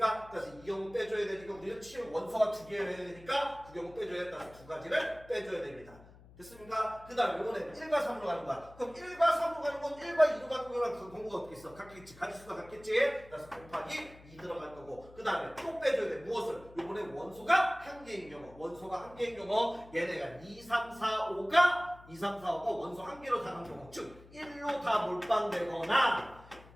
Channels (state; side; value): noise; left; hum, 22 dB below the sound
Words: 그래서 이 경우 빼줘야 되니까 우리는 치역 원소가 2개여야 되니까 그 경우 빼줘야 된다. 2가지를 빼줘야 됩니다. 됐습니까? 그 다음에 요거는 1과 3으로 가는 거야. 그럼 1과 3으로 가는 건 1과 2로 가는 거랑 그 공부가 어떻게 있어? 같겠지. 가지수가 같겠지? 그래서 곱하기 2 들어갈 거고 그 다음에 또 빼줘야 돼. 무엇을? 요번에 원소가 한 개인 경우 원소가 한 개인 경우 얘네가 2, 3, 4, 5가 2, 3, 4, 5가 원소 한 개로 다 간 경우 즉 1로 다 몰빵되거나